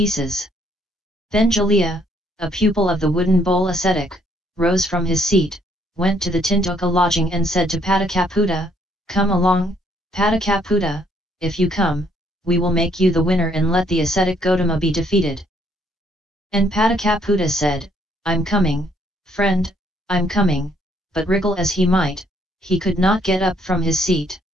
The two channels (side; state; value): both; normal; correlation 0.67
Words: Then Jalya, a pupil of the wooden bowl ascetic, rose from his seat, went to the Tintoka lodging and said to Patikaputta, "Come along, Patikaputta, if you come, we will make you the winner and let the ascetic Gotama be defeated." And Patikaputta said, "I'm coming, friend, I'm coming," but wriggle as he might, he could not get up from his seat.